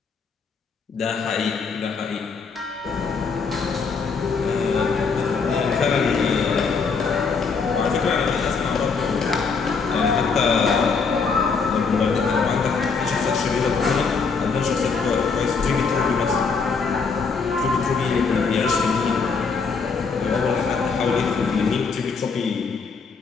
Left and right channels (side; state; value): right; quieter; 5.1 dB